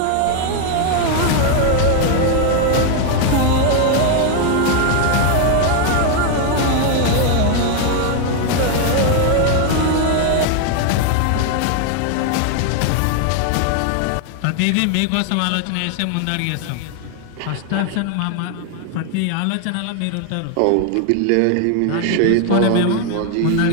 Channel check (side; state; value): both; different; correlation 0.00